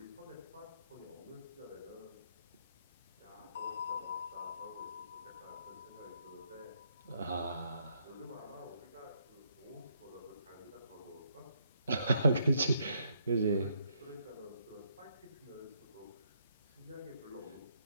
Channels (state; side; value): inverted; both; correlation -0.73